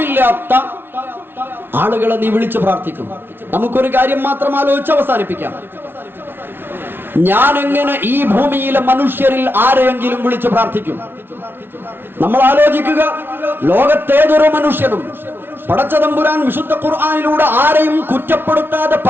ആളുകളെ നീ വിളിച്ചു പ്രാർത്ഥിക്കും? നമുക്കൊരു കാര്യം മാത്രം ആലോചിച്ച് അവസാനിപ്പിക്കാം. ഞാൻ എങ്ങനെ ഈ ഭൂമിയിലെ മനുഷ്യരിൽ ആരെയെങ്കിലും വിളിച്ചു പ്രാർത്ഥിക്കും? നമ്മൾ ആലോചിക്കുക. ലോകത്തേതൊരു മനുഷ്യനും പടച്ചതമ്പുരാൻ വിശുദ്ധ ഖുർആനിലൂടെ ആരെയും കുറ്റപ്പെടുത്താതെ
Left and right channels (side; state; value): left; late; 0.11 ms